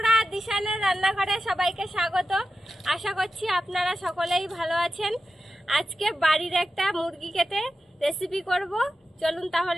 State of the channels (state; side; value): normal; both; correlation 0.92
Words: দিশানের রান্নাঘরে সবাইকে স্বাগত। আশা করছি আপনারা সকলেই ভালো আছেন। আজকে বাড়ির একটা মুরগি কেটে রেসিপি করব। চলুন